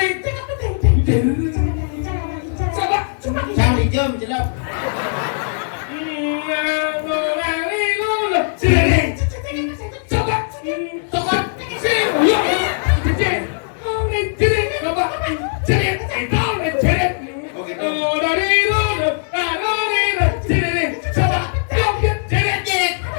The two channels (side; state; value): right; silent; 67 dB below the other